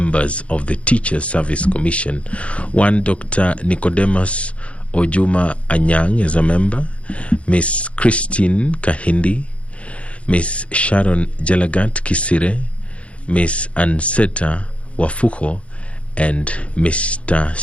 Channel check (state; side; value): late; right; 0.062 ms